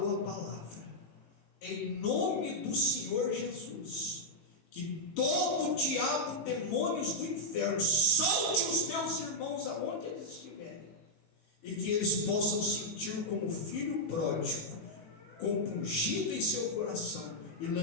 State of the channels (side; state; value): right; late; 18 ms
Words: a palavra em nome do Senhor Jesus, que todo diabo, demônios do inferno, solte os meus irmãos aonde eles estiverem, e que eles possam sentir como filho pródigo, compungido em seu coração, e